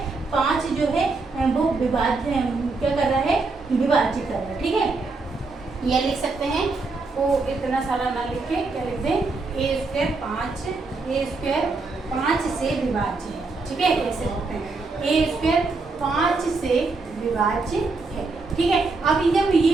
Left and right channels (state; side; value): quieter; left; 3.8 dB